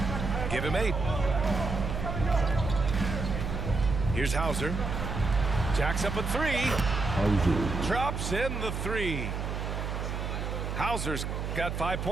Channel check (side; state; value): right; noise; hum, 3 dB below the sound